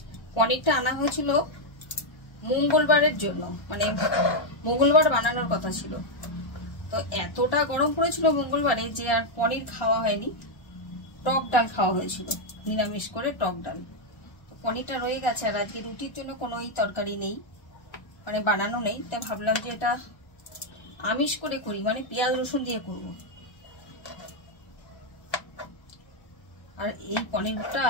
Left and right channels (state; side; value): late; right; 1.3 ms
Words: পনিরটা আনা হয়েছিল মঙ্গলবারের জন্য, মানে মঙ্গলবার বানানোর কথা ছিল। তো এতটা গরম পড়েছিল মঙ্গলবারে যে আর পনির খাওয়া হয়নি, টক ডাল খাওয়া হয়েছিল, নিরামিষ করে টক ডাল। তো পনিরটা রয়ে গেছে, আর আজকে রুটির জন্য কোনো তরকারি নেই, মানে বানানো নেই। তাই ভাবলাম যে এটা আমিষ করে করি, মানে পেঁয়াজ রসুন দিয়ে করব। আর এই পনিরটা